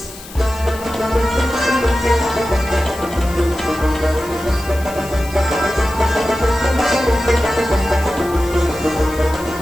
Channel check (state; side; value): noise; left; hiss, 17 dB below the sound